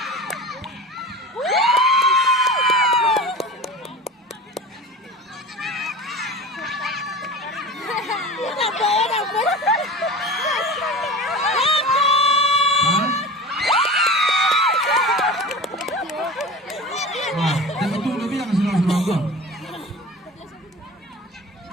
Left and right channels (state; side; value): normal; both; correlation 0.33